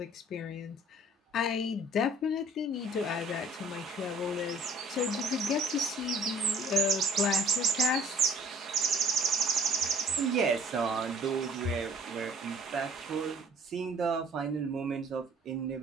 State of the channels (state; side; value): normal; both; correlation 0.54